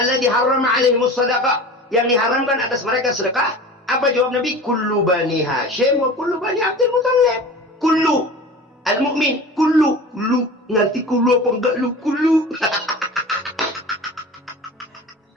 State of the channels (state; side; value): normal; both; correlation 0.36